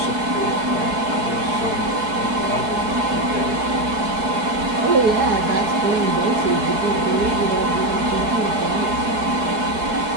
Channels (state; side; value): late; left; 4.7 ms